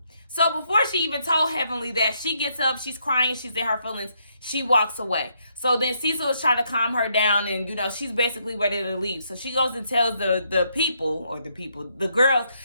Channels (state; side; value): inverted; both; correlation -0.75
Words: So before she even told Heavenly that, she gets up, she's crying, she's in her feelings, she walks away. So then Cecil is trying to calm her down, and, you know, she's basically ready to leave. So she goes and tells the girls,